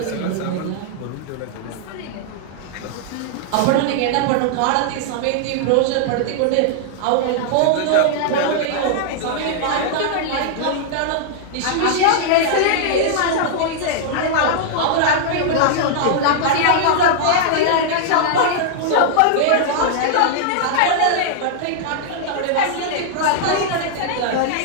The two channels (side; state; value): both; different; correlation -0.01